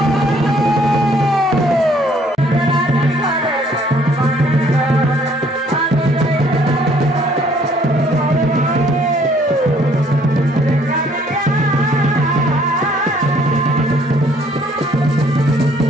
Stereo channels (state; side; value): normal; both; correlation 0.62